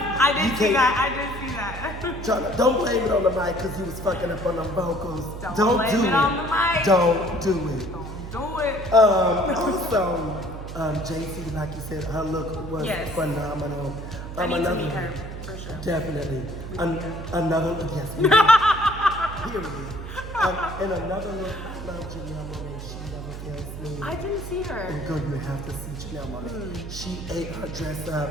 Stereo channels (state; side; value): noise; right; hum, 9 dB below the sound